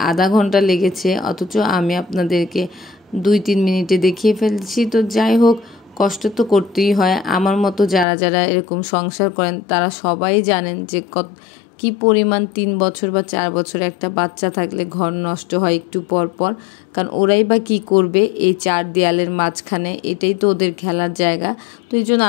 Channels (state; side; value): drops out; right; at 8.1 s